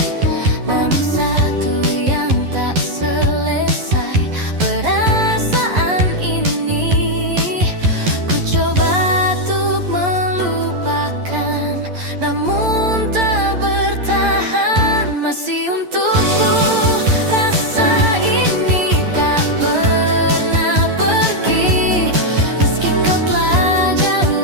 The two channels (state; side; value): late; left; 11 ms